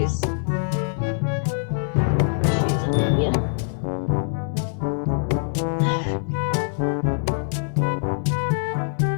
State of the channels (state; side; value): silent; right; 63 dB below the other